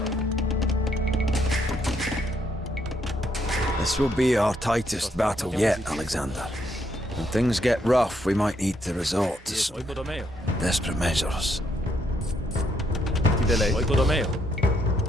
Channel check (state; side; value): normal; both; correlation 0.74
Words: This will be our tightest battle yet, Alexander. When things get rough, we might need to resort to some desperate measures.